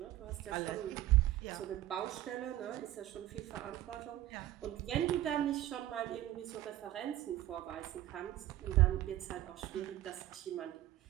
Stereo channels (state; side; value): quieter; left; 14.3 dB